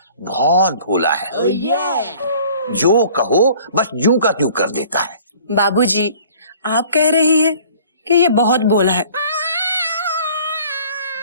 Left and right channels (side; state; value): both; inverted; correlation -0.51